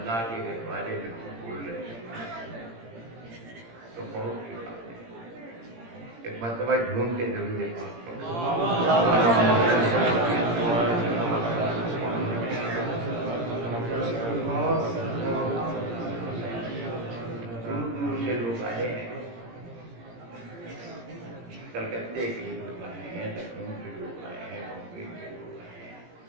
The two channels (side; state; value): left; late; 17 ms